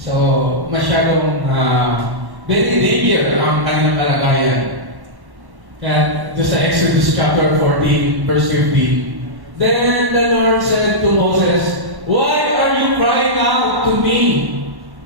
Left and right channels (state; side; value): late; left; 1.1 ms